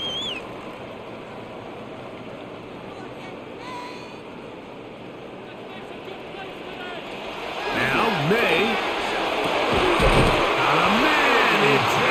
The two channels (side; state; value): both; identical; correlation 1.00